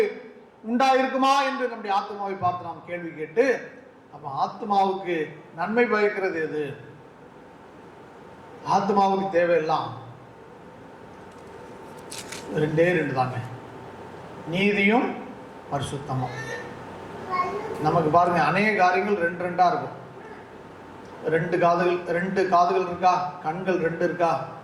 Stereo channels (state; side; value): identical; both; correlation 1.00